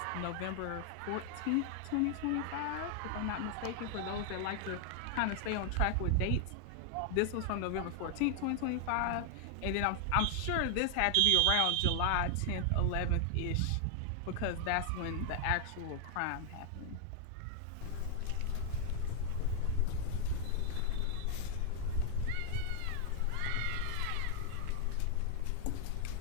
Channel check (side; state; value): both; different; correlation 0.00